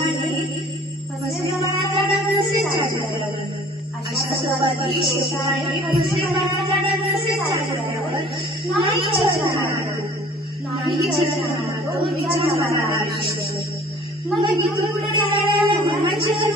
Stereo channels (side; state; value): both; normal; correlation 0.50